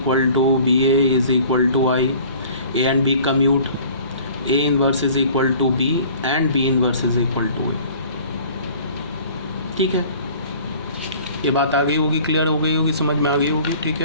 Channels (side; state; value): both; inverted; correlation -0.49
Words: to B A is equal to I, A and B commute, A inverse is equal to B and B inverse is equal to I. ठीक है, ये बात आ गई होगी, क्लियर हो गई होगी, समझ में आ गई होगी। ठीक